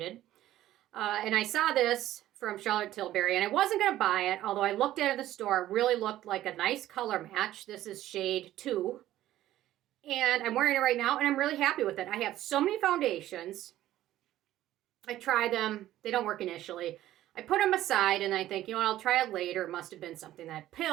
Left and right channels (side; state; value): left; quieter; 13.8 dB